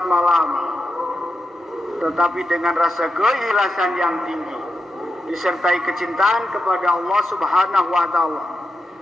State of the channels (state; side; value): normal; both; correlation 0.88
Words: malam, tetapi dengan rasa keikhlasan yang tinggi, disertai kecintaan kepada Allah Subhanahu wa Ta'ala,